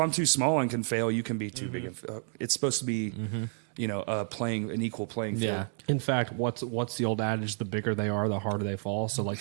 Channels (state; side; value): silent; left; 58 dB below the other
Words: I'm too small and can fail, you can be too big. It's supposed to be, playing an equal playing field. Yeah. In fact, what's the old adage? The bigger they are, the harder they fall. So, like,